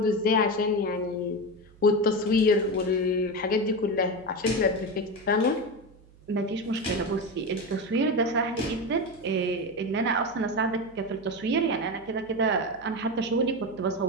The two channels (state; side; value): noise; right; hum, 25 dB below the sound